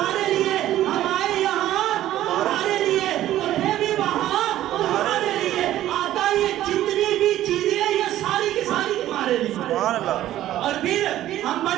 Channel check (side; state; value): left; quieter; 13.4 dB